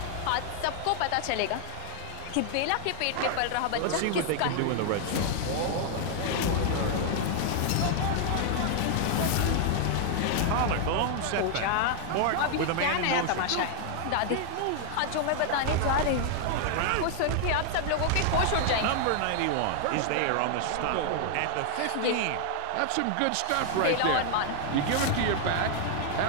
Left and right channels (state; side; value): different; both; correlation 0.00